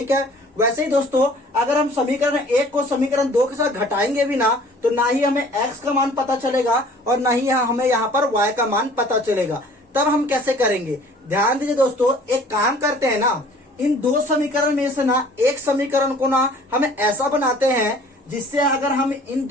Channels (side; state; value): both; normal; correlation 0.51